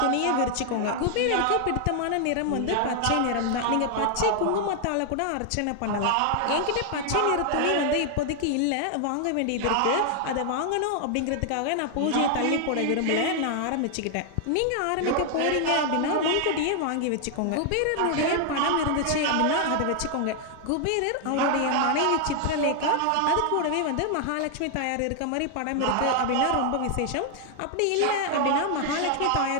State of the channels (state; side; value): different; both; correlation 0.00